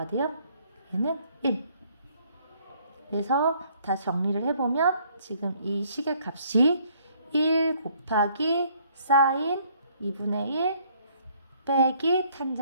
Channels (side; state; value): both; inverted; correlation -0.64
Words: 돼요? 얘는 1. 그래서 다시 정리를 해보면 지금 이 식의 값이 1 곱하기 사인 2분의 1 빼기